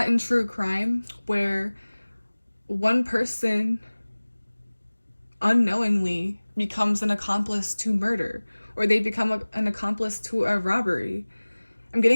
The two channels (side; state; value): both; inverted; correlation -1.00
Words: in true crime where one person unknowingly becomes an accomplice to murder, or they become an accomplice to a robbery. I'm